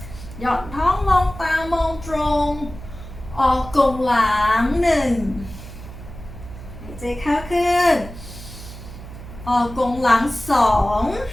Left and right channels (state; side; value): noise; right; hum, 14 dB below the sound